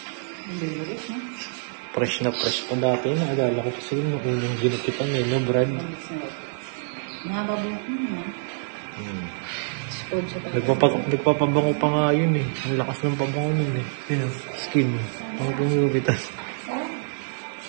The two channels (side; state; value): left; silent; 61 dB below the other